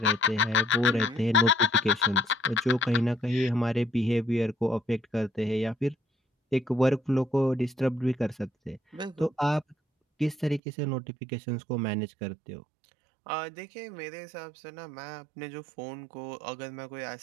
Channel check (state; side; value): drops out; left; at 10.6 s